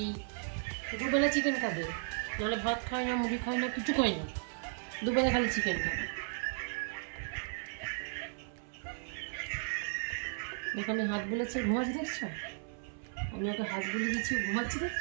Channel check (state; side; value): silent; left; 54 dB below the other